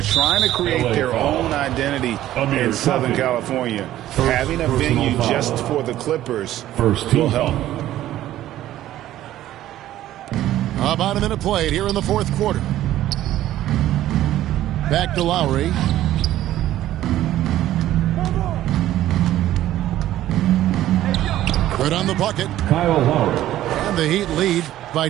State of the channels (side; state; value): left; quieter; 13.6 dB